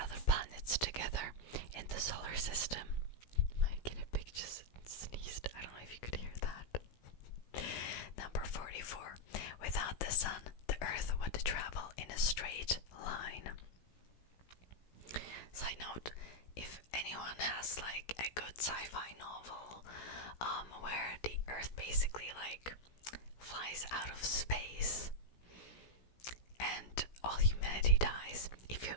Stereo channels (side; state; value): right; late; 16 ms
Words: planets together in the solar system. My guinea pig just sneezed. I don't know if you could hear that. Number 44. Without the sun, the Earth would travel in a straight line. Side note, if anyone has like a good sci-fi novel where the Earth basically like flies out of space and